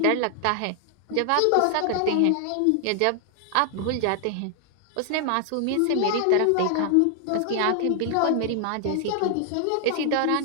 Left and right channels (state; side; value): different; both; correlation 0.00